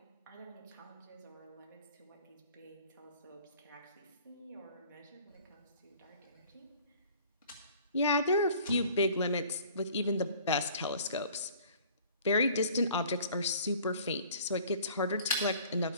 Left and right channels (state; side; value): inverted; both; correlation -0.51